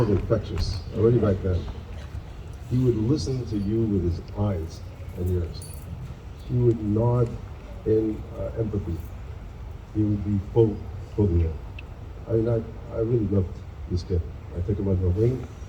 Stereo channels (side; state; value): both; identical; correlation 1.00